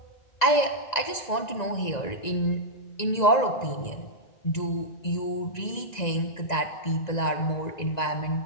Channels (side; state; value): right; late; 1.9 ms